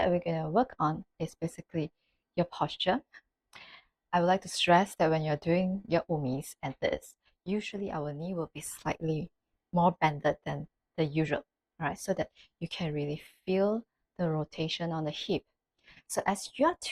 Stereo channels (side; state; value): both; identical; correlation 1.00